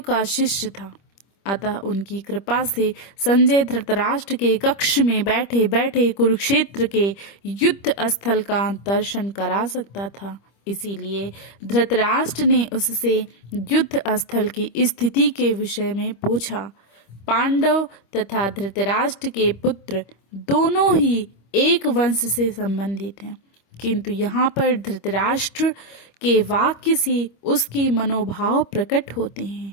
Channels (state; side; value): late; right; 25 ms